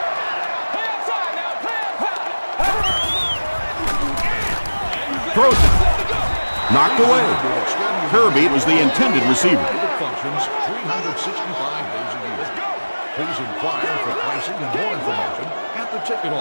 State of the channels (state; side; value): inverted; both; correlation -1.00